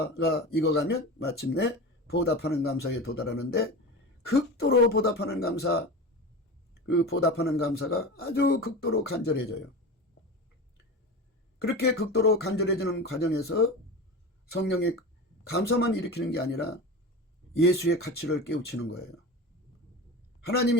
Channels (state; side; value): normal; both; correlation 0.28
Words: 익어가면 마침내 보답하는 감사에 도달하는데, 극도로 보답하는 감사, 그 보답하는 감사가 아주 극도로 간절해져요. 그렇게 극도로 간절해지는 과정에서 성령의 감사만 일으키는 게 아니라 예수의 가치를 깨우치는 거예요. 하나님